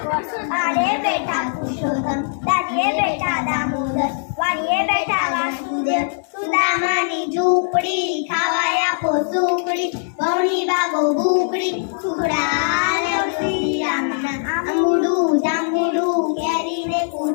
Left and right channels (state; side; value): silent; right; digital silence